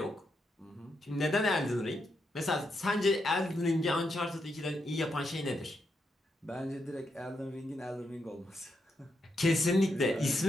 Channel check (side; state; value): both; normal; correlation 0.82